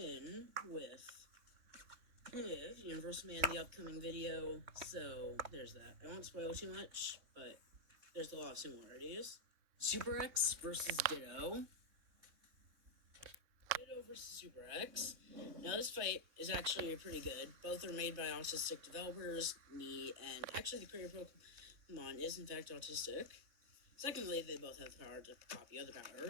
with Universal Man in the upcoming video, so there's that. I won't spoil too much, but there's a lot of similarities. Super X versus Ditto. Ditto versus Super X. Now, this fight is actually pretty good. Both are made by autistic developers, me, and actually the creator of Pokemon is in fact autistic. Secondly, they both have the power to copy other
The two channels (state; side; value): late; left; 3.6 ms